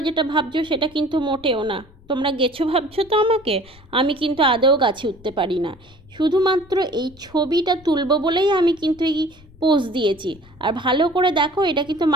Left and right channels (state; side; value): noise; left; rumble, 24 dB below the sound